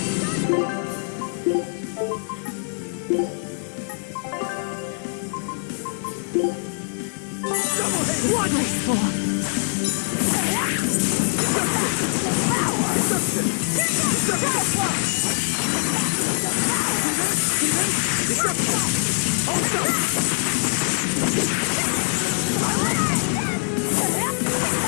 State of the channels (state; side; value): silent; right; 57 dB below the other